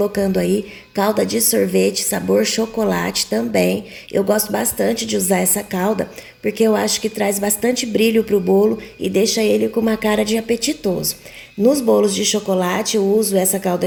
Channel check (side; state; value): both; identical; correlation 1.00